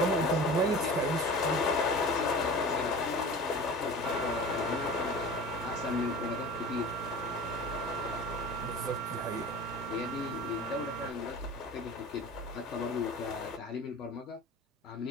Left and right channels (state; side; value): normal; both; correlation 0.37